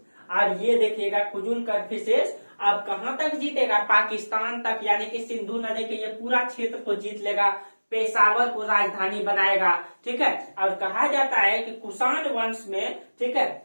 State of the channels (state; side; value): inverted; both; correlation -1.00